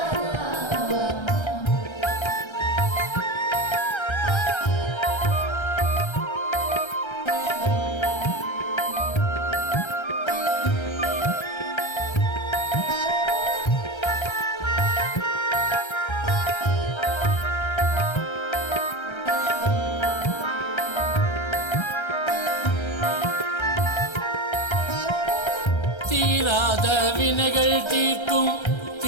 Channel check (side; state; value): right; late; 1.3 ms